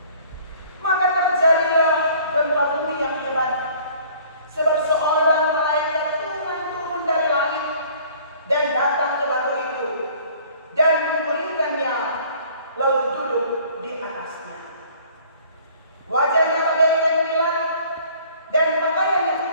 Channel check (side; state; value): both; inverted; correlation -0.54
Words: Maka terjadilah gempa bumi yang hebat, sebab seorang malaikat Tuhan turun dari langit dan datang ke batu itu dan memulihkannya, lalu duduk di atasnya. Wajahnya bagaikan kilat dan pakaiannya